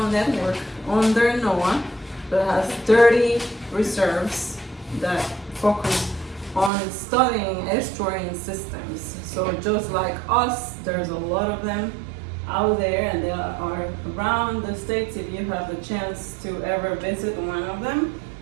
network under NOAA that has 30 reserves that focus on studying estuarine systems. So just like us, there's a lot of them out there, and they are around the states. If you have the chance to ever visit one of them,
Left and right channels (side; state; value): left; drops out; at 6.7 s